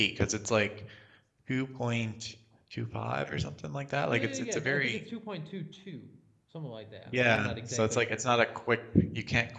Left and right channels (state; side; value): identical; both; correlation 1.00